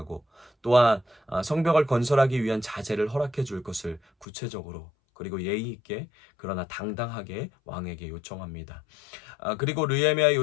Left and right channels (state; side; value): drops out; right; at 4.2 s